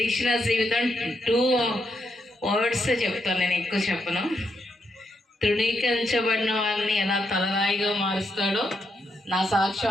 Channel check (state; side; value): normal; both; correlation 0.80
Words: జీవితం 2 వర్డ్స్ చెప్తాను, నేను ఎక్కువ చెప్పను. తృణీకరించబడిన వారిని ఎలా తలరాయిగా మారుస్తాడో నా సాక్ష్యం